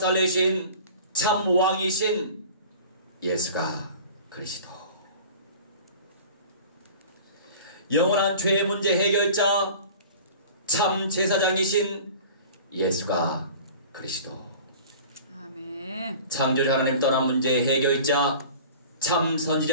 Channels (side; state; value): both; inverted; correlation -0.42